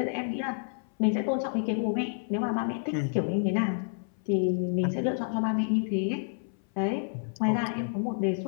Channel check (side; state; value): right; silent; 57 dB below the other